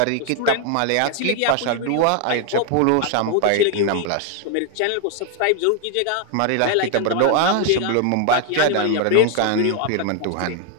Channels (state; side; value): different; both; correlation 0.00